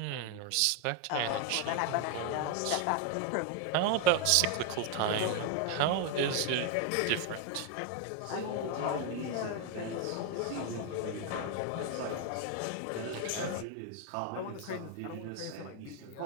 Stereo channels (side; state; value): both; different; correlation 0.01